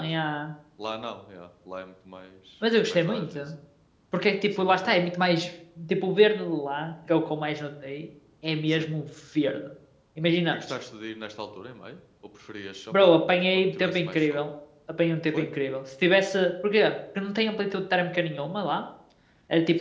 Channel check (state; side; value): identical; both; correlation 1.00